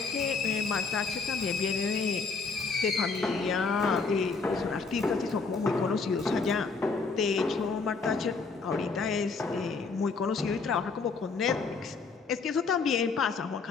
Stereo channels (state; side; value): quieter; right; 4.6 dB